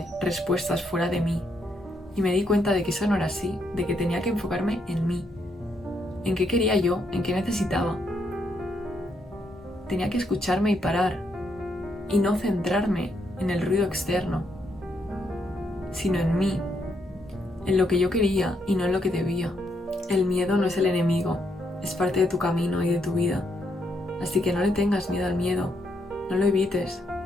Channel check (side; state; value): both; normal; correlation 0.77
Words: respuestas fuera de mí y me di cuenta de que eso no era así, de que tenía que enfocarme en mí, en qué quería yo, en qué necesitaba. Tenía que escucharme y parar y no centrarme en el ruido externo, sino en mí, en lo que yo quería y no en lo que debía. El miedo no es el enemigo, es parte de tu camino y de tu vida. Así que no le tengas miedo al miedo, no lo evites.